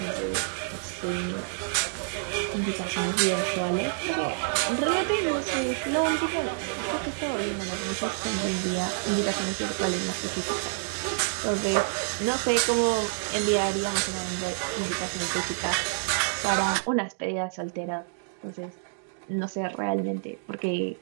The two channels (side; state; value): left; silent; digital silence